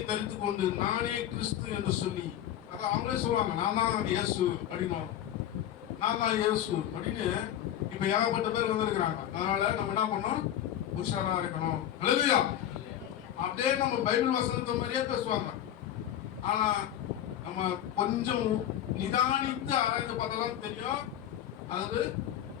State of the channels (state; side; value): quieter; right; 11.2 dB